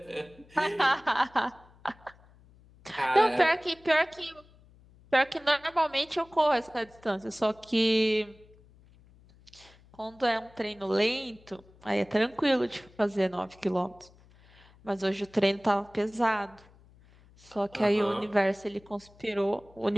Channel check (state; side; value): noise; left; hum, 27 dB below the sound